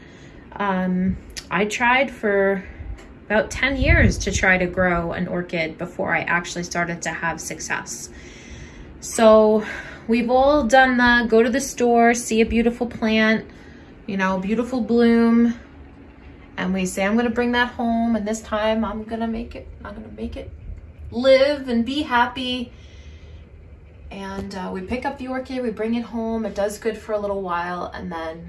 I tried for about 10 years to try to grow an orchid before I actually started to have success. So we've all done the go to the store, see a beautiful plant, you know, beautiful bloom, and we say, I'm gonna bring that home, and this time I'm gonna make it live and be happy. And we pick up the orchid, we bring it home, it does good for a little while, and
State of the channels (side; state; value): both; identical; correlation 1.00